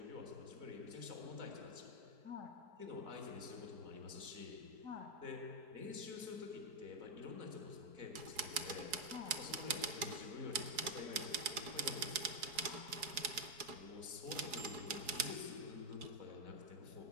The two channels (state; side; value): late; left; 4.8 ms